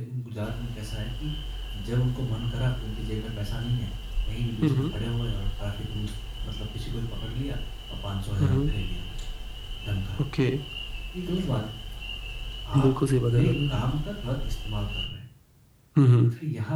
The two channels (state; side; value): identical; both; correlation 1.00